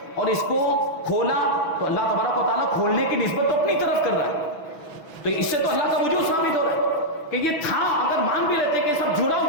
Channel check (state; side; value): late; right; 6.2 ms